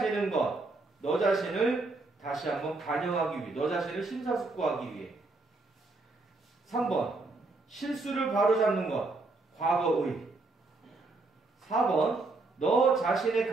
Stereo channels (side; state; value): left; quieter; 3.4 dB